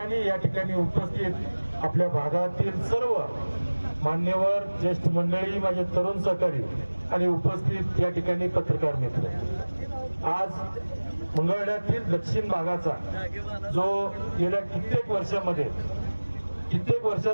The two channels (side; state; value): both; inverted; correlation -1.00